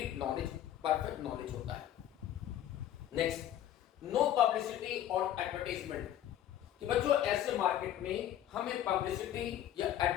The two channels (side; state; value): right; quieter; 11.5 dB